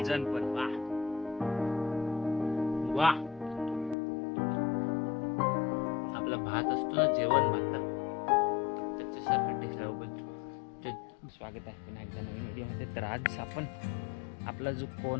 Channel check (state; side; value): drops out; right; at 4.0 s